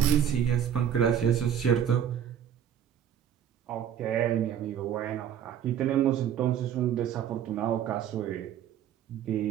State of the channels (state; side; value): quieter; left; 9.5 dB